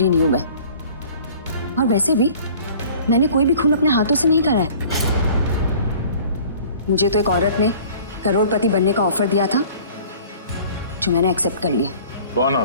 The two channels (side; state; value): both; inverted; correlation -0.48